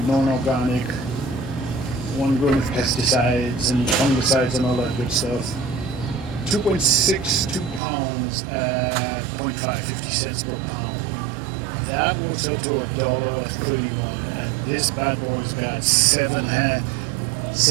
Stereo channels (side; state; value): left; drops out; at 7.8 s